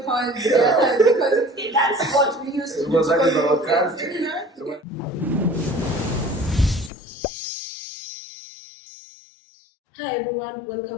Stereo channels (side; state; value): right; drops out; at 6.9 s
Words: horns, yeah, because that's what we used to do. Because that is our country. Hi everyone,